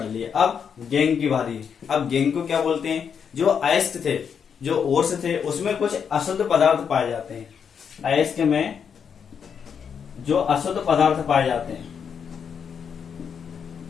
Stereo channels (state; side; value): quieter; right; 7.1 dB